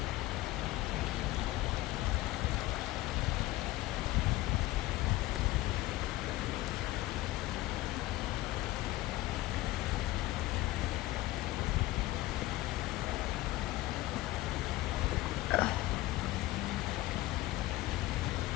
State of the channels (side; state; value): right; quieter; 17.6 dB